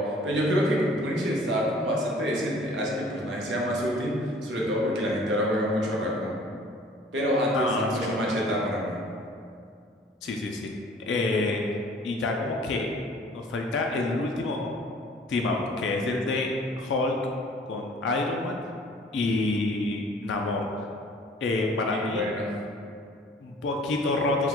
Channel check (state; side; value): normal; both; correlation 0.52